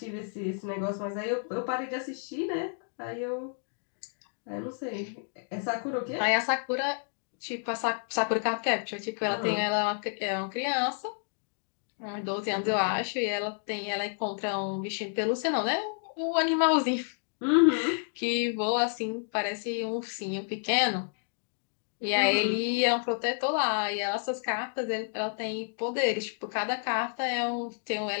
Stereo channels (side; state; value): right; silent; 58 dB below the other